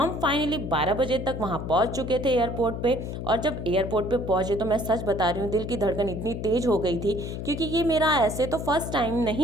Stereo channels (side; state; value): left; noise; hum, 6 dB below the sound